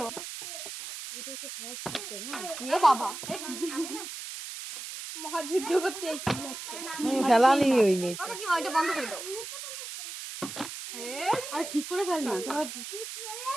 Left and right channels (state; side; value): noise; right; hiss, 9 dB below the sound